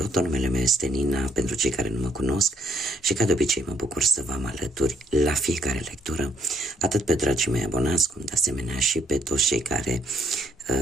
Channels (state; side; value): normal; both; correlation 0.69